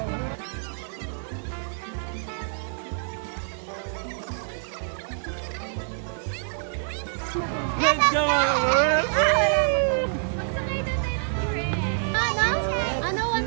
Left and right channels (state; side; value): silent; left; digital silence